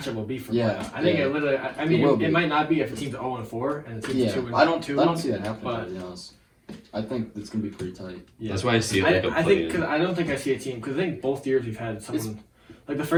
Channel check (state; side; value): identical; both; correlation 1.00